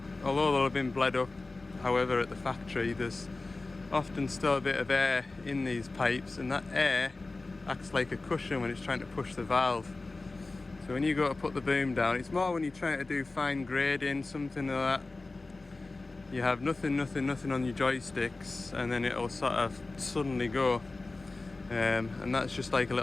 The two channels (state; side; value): quieter; right; 3.3 dB